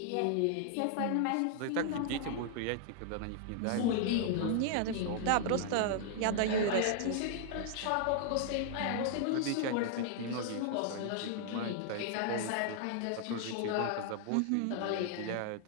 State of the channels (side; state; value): both; different; correlation -0.01